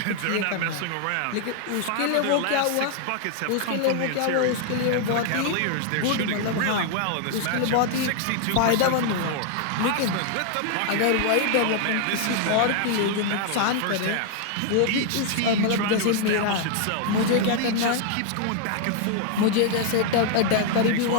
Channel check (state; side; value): different; both; correlation 0.00